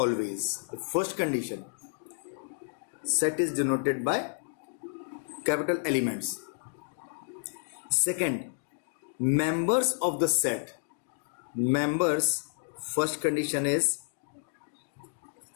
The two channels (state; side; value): silent; right; digital silence